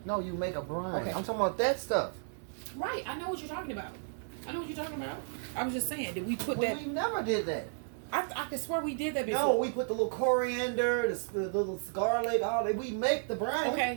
No, you make a brine. Okay. I'm talking about that stuff. Right. I know what you're talking about. I know what you're talking about. I was just saying, did we put Well, that? we never did that. I could swear we did that before. No, we put the little coriander, the little garlic, all that. We make the brine.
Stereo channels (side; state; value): left; silent; 56 dB below the other